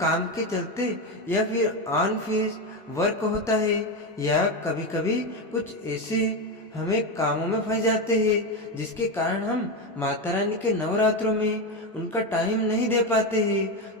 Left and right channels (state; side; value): normal; both; correlation 0.14